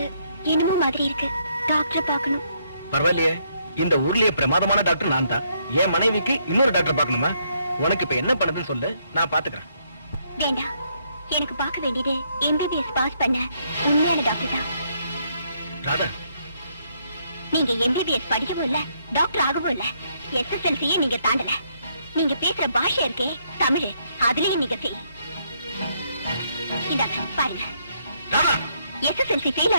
என்னமோ மாதிரி இருக்கு. டாக்டரை பார்க்கணும். பரவாயில்லையே, இந்த ஊர்லயே பிரமாதமான டாக்டர் நான் தான். என் மனைவிக்கு இன்னொரு டாக்டர் பார்க்கணுமா? உனக்கு இப்ப என்ன பண்ணுதுன்னு சொல்லு, நான் பாத்துக்கிறேன். வேண்டாம், எனக்கு பார்க்க வேண்டியது எம்பிபிஎஸ் பாஸ் பண்ண உண்மையான டாக்டர் தான். ராதா, நீங்க எம்பிபிஎஸ் படிக்கவும் இல்ல, டாக்டர் ஆகவும் இல்ல. எஸ்எஸ்எல்சியே நீங்க தாண்டல. நீங்க பேசுற பாஷை இருக்கே தமிழ், அதுலயும் நீங்க ஃபெயில். இந்தாங்க பாருங்க, ராதா, எஸ்எஸ்எல்சி ஃபெயில்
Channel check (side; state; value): both; inverted; correlation -0.73